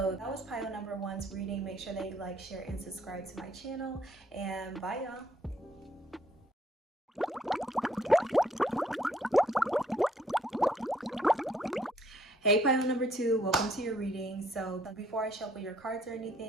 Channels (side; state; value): both; normal; correlation 0.67